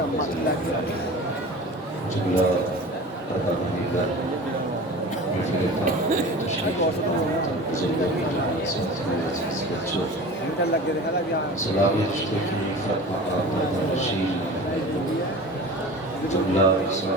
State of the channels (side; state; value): both; normal; correlation 0.36